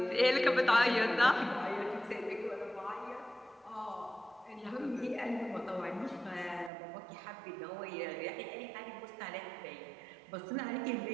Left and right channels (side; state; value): left; drops out; at 6.7 s